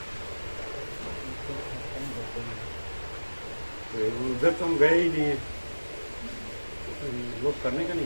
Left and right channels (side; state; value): both; inverted; correlation -1.00